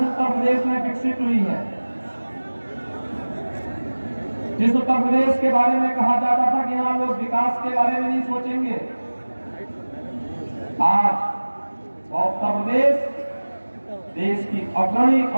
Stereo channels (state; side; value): inverted; both; correlation -1.00